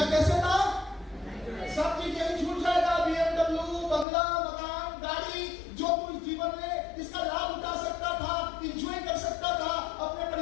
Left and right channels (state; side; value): drops out; right; at 4.0 s